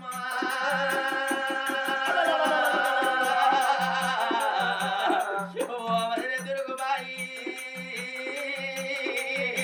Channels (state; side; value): identical; both; correlation 1.00